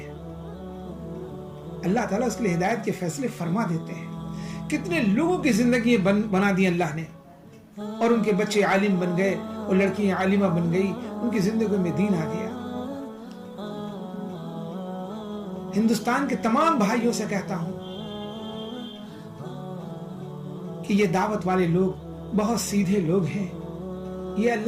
اللہ تعالیٰ اس کے لیے ہدایت کے فیصلے فرما دیتے ہیں. کتنے لوگوں کی زندگی بنا دی اللہ نے، اور ان کے بچے عالم بن گئے اور لڑکیاں عالمہ بن گئی، ان کی زندگی میں دین آ گیا. ہندوستان کے تمام بھائیوں سے کہتا ہوں کہ یہ دعوت والے لوگ بہت سیدھے لوگ ہیں، یہ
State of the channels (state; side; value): identical; both; correlation 1.00